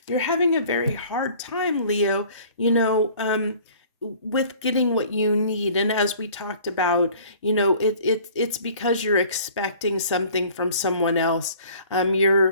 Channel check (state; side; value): inverted; both; correlation -0.51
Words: You're having a very hard time, Leo, with getting what you need. And as we talked about, it's because you're expecting something from someone else. And